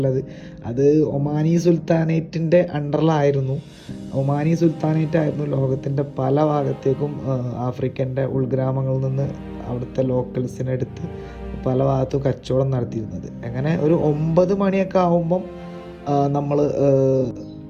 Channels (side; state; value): both; identical; correlation 1.00